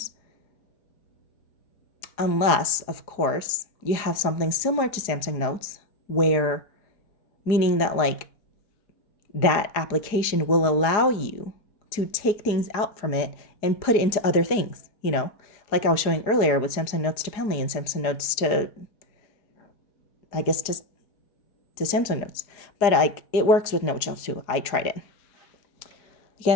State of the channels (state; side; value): late; right; 4.8 ms